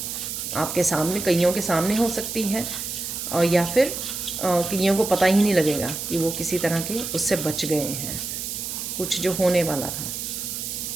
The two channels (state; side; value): noise; right; hiss, 5 dB below the sound